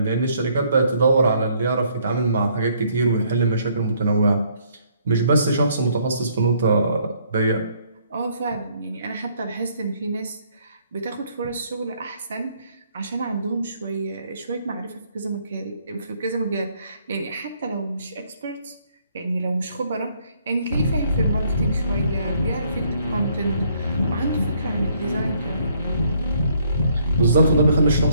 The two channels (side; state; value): both; inverted; correlation -0.67